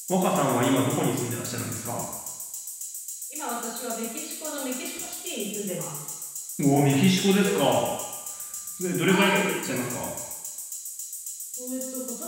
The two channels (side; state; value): both; identical; correlation 1.00